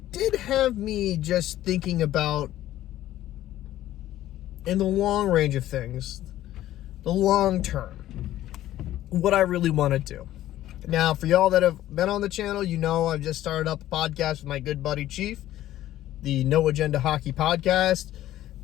did have me just thinking about, in the long range of things, the long term, what I really want to do. Now, for y'all that have been on the channel, you know I've just started up a podcast with my good buddy Chief, the No Agenda Hockey Podcast.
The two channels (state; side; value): quieter; right; 13.7 dB